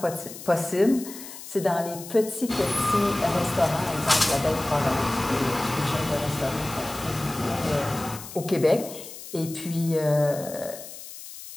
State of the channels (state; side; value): noise; left; hiss, 13 dB below the sound